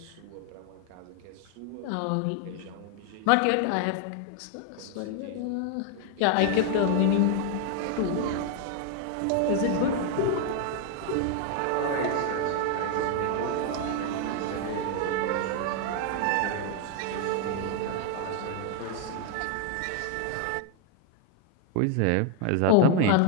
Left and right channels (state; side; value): different; both; correlation 0.00